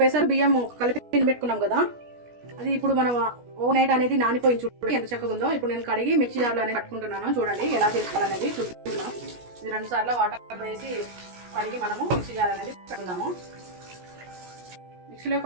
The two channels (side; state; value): left; late; 17 ms